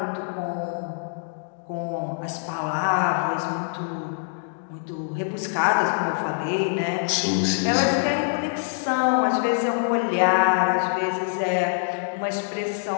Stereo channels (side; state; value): right; silent; digital silence